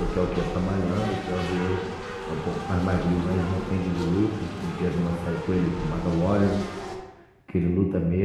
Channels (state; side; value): identical; both; correlation 1.00